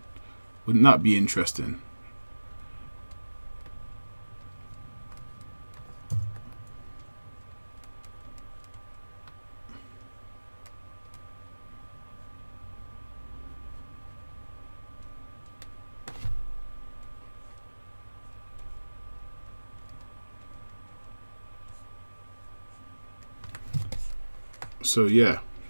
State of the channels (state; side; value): inverted; both; correlation -1.00